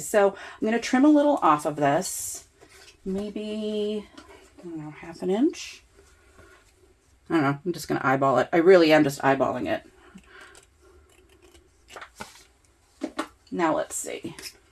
So I'm going to trim a little off of this. Maybe, I don't know, half an inch. I don't know. I'm just going to eyeball it. I really am just eyeballing it. Now let's see.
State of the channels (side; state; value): both; identical; correlation 1.00